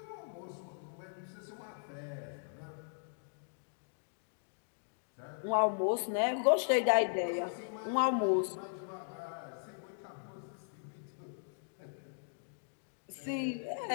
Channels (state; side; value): silent; right; digital silence